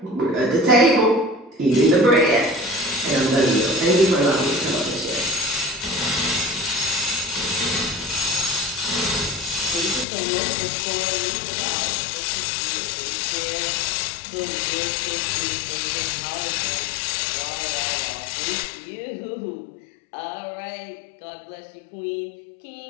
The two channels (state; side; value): drops out; right; at 10.1 s